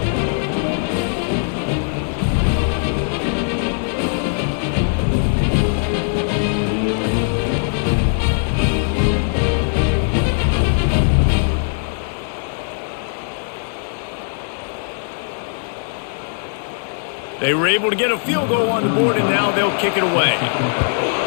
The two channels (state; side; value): silent; right; 62 dB below the other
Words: They were able to get a field goal on the board, and now they'll kick it away.